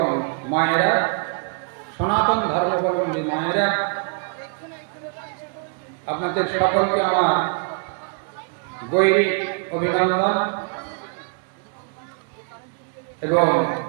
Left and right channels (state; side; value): quieter; left; 40.0 dB